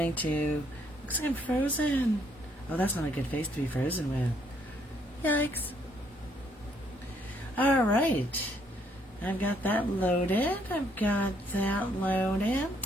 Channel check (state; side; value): normal; both; correlation 0.69